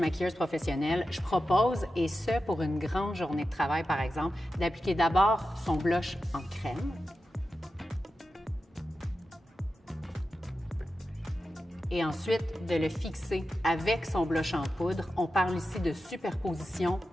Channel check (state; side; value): normal; both; correlation 0.91